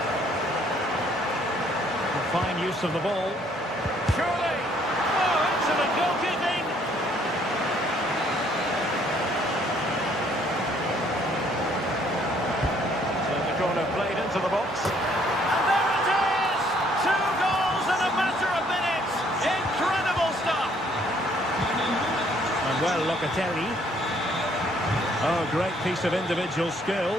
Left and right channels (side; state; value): both; normal; correlation 0.64